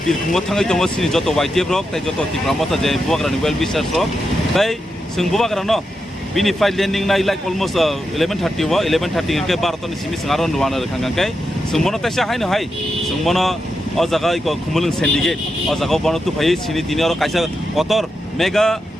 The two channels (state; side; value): normal; both; correlation 0.87